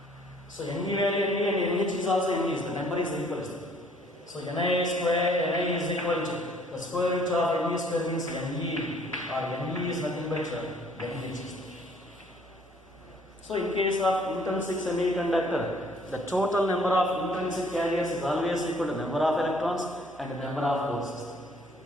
So Ne value Ne and Nh is also Ne, the number is equal. So Ni square, Ni is equal to the square root of Ne square means Ne, or Ne is nothing but Nh. So in case of intrinsic semiconductor, the total number of intrinsic carriers is always equal to number of electrons and number of holes.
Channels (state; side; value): normal; both; correlation 0.60